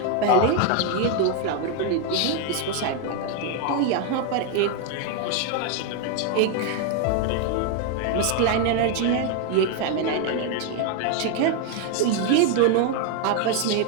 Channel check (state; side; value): different; both; correlation 0.01